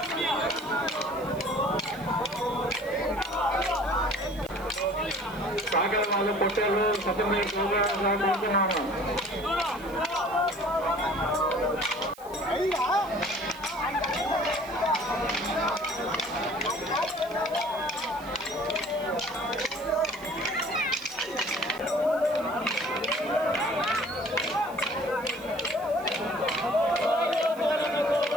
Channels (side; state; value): right; noise; hiss, 21 dB below the sound